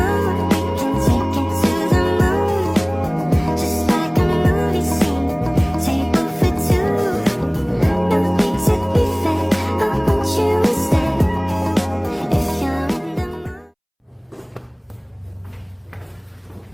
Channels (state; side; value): identical; both; correlation 1.00